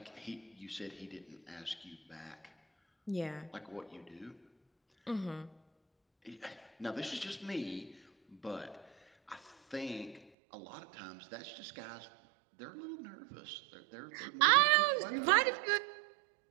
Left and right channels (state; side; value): drops out; left; at 10.3 s